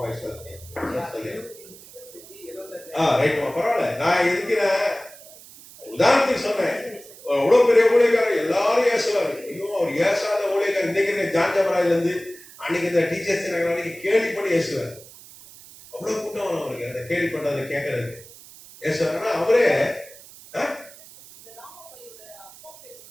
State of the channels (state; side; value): noise; right; hiss, 20 dB below the sound